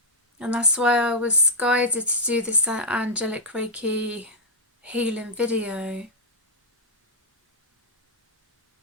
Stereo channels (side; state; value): both; normal; correlation -0.05